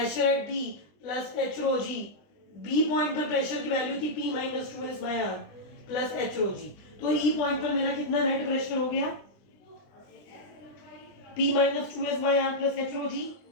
at B plus h rho g. B point पर प्रेशर की वैल्यू थी P minus 2S by R plus h rho g. तो E point पर मेरा कितना net pressure हो गया, P minus 2S by R plus h rho g,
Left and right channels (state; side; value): late; right; 20 ms